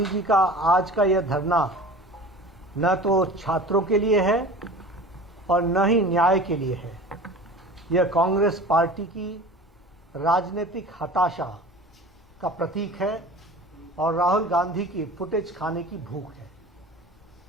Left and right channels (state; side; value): normal; both; correlation 0.39